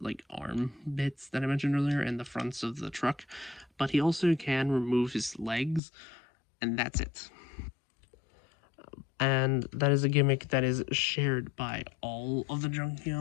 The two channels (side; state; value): right; drops out; at 5.8 s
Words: like arm bits that I mentioned earlier, and the fronts of the truck. But he also can remove his legs, and that's it. And that is a gimmick that is shared by all of the